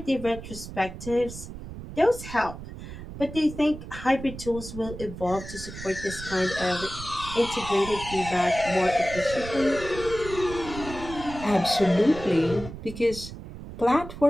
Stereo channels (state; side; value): noise; right; rumble, 11 dB below the sound